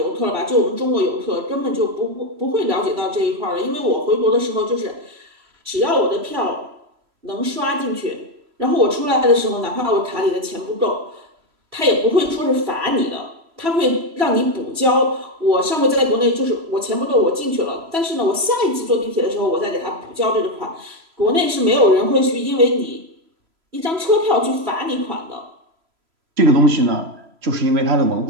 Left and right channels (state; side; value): late; left; 3.0 ms